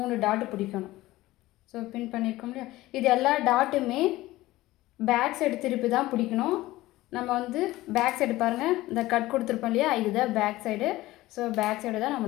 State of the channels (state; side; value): quieter; right; 17.5 dB